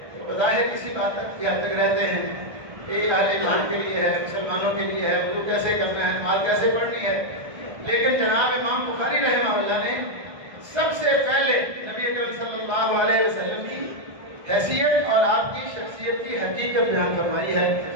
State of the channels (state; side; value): late; left; 1.3 ms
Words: تو بظاہر کسی بات تک کی حد تک رہتے ہیں کہ یہ اہل ایمان کے لیے ہے، مسلمانوں کے لیے ہے، وضو کیسے کرنا ہے، نماز کیسے پڑھنی ہے، لیکن جناب امام بخاری رحمہ اللہ نے سب سے پہلے نبی اکرم صلی اللہ علیہ وسلم کی حیثیت اور آپ کی شخصیت کی حقیقت بیان فرمائی ہے،